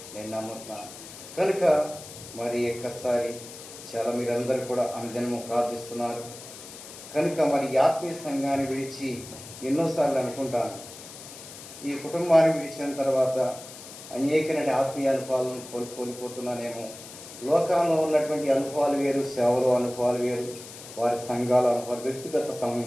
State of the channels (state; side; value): noise; left; hiss, 15 dB below the sound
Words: నేను నమ్ముతున్నాను. కనుక మరి ఒక్కసారి చాలా మీరందరూ కూడా అనుదినము ప్రార్థిస్తున్నారు. కనుక మరి ఆత్మీయ సంఘాన్ని విడిచి ఎన్నోసార్లు అనుకుంటాను, ఈ కుటుంబాన్ని విడిచిన తర్వాత అనేకమైన ఆత్మీయ అనుభవాలను కోల్పోతున్నానేమో. లోకంలో ఉన్నటువంటి అనుభవాలు వేరు, సేవలో అనుభవాలు వేరు, వారి సంఘాల అనుభవాలు, వ్యక్తిగత